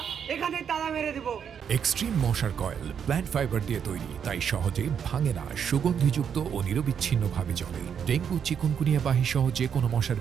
এখানে তালা মেরে দিব। এক্সট্রিম মশার কয়েল প্ল্যান্ট ফাইবার দিয়ে তৈরি, তাই সহজে ভাঙে না, সুগন্ধিযুক্ত ও নিরবিচ্ছিন্নভাবে জ্বলে। ডেঙ্গু, চিকুনগুনিয়া বাহি সহ যে কোনো মশার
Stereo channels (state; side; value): quieter; left; 7.7 dB